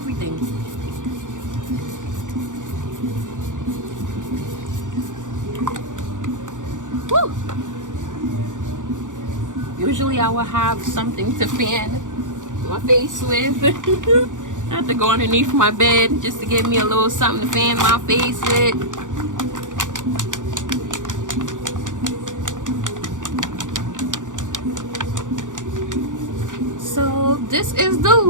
Woo! Usually I will have something to fan my face with. I have to go underneath my bed just to get me a little something to fan my face with. So this is the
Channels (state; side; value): late; left; 0.87 ms